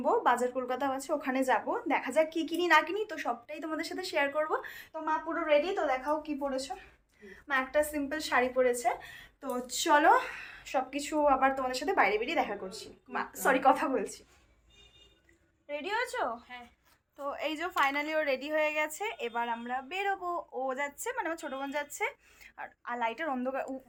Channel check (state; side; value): identical; both; correlation 1.00